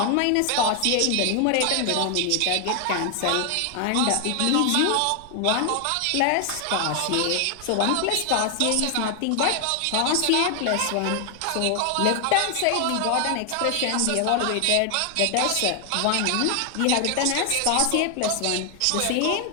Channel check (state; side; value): different; both; correlation 0.00